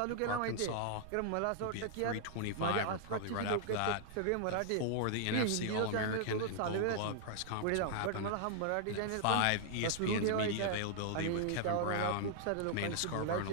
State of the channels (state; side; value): different; both; correlation -0.01